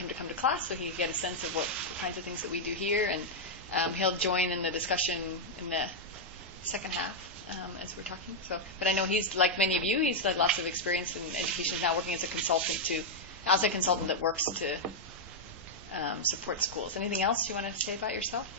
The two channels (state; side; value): normal; both; correlation -0.03